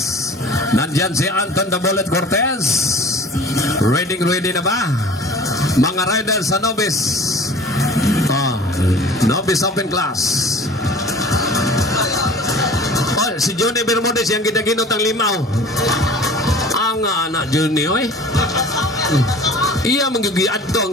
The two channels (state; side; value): normal; both; correlation 0.44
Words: Nandyan si Anton the Bullet Cortez. Ready na ba? Mga riders sa Novice. Novice open class. Si Johnny Bermudez yang ginaginot ang limaw. Ang anak Johnny, oy. Iya magigiad to